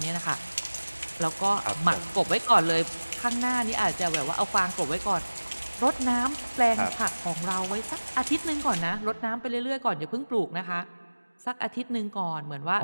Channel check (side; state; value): both; inverted; correlation -1.00